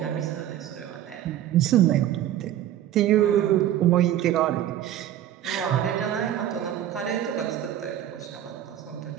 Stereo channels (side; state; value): left; quieter; 11.7 dB